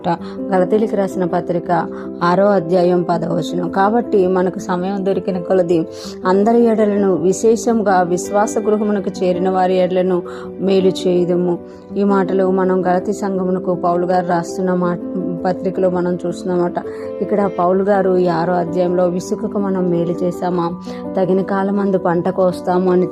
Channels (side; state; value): both; identical; correlation 1.00